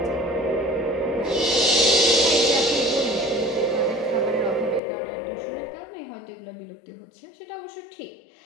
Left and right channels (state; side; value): drops out; right; at 4.8 s